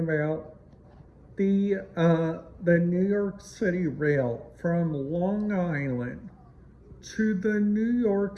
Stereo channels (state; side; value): identical; both; correlation 1.00